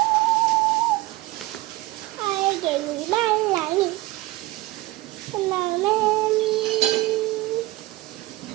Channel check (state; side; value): quieter; left; 18.9 dB